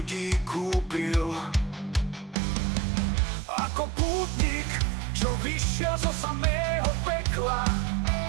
kúpil. Ako pútnik, čo vyšiel zo samého pekla.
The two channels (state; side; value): drops out; left; at 2.4 s